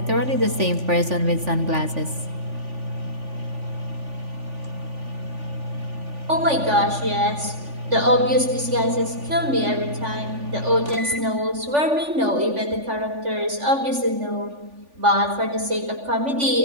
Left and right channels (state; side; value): late; left; 3.5 ms